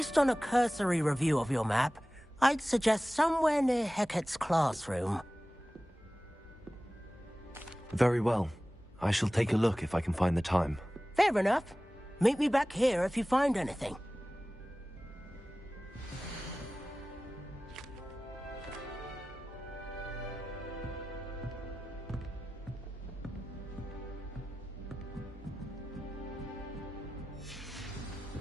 on a cursory review of your map, I'd suggest somewhere near Hecat's classroom. Very well. I shall take a look if I can find the time. Fair enough. Meet me back here if you find anything.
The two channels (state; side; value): normal; both; correlation 0.96